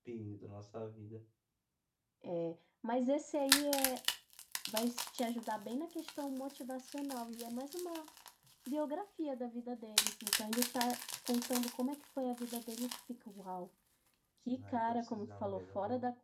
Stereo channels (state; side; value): identical; both; correlation 1.00